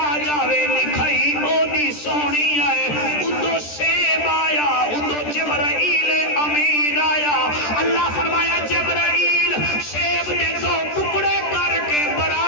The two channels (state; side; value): late; right; 13 ms